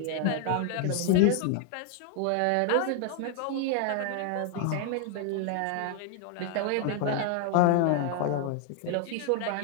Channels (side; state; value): both; different; correlation 0.00